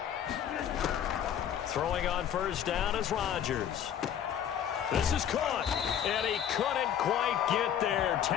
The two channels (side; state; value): right; quieter; 9.6 dB